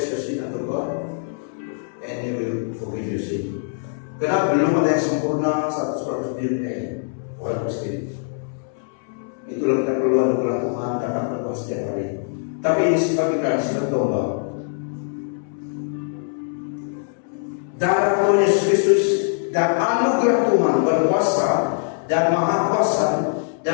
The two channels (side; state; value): right; silent; 64 dB below the other